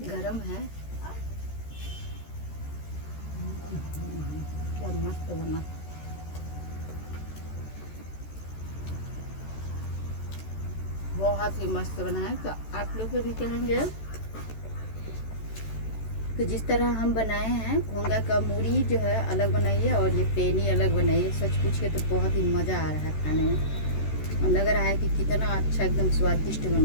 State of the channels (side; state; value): right; late; 14 ms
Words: गरम है। मस्त बना। बहुत ही मस्त बना है। तो आप लोग को भी कहेंगे तो जिस तरह हम बनाए हैं घोंगा का मूढ़ी जो है अलग बनाइए और ये पेनी अलग बनाइए। सच पूछिए तो बहुत ही मज़ा आ रहा है खाने में, और लग रहा है कि कितना अच्छा एकदम स्वादिष्ट